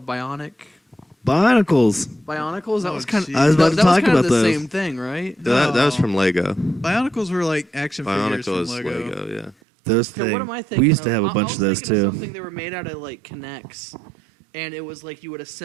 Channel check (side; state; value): left; drops out; at 9.6 s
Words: Bionicles. Bionicles. That Oh, was kind geez. of. I was about to that was talk kind about of the those. same thing, right? That was No. from Lego. Bionicles were like action figures Bionicle from is Lego. Lego. Yeah. Those Okay, things. what am I thinking? We used to have a I bunch was of those thinking too. Something they were made out of like Connects, and it was like you would